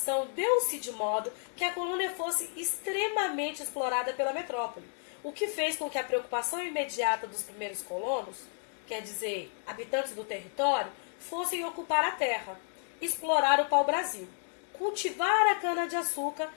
deu-se de modo que a colônia fosse extremamente explorada pela metrópole, o que fez com que a preocupação imediata dos primeiros colonos, quer dizer, habitantes do território, fossem ocupar a terra, explorar o pau-brasil, cultivar a cana-de-açúcar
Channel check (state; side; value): silent; right; 55 dB below the other